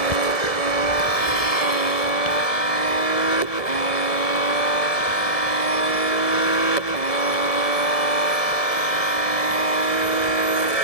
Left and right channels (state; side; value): late; right; 1.7 ms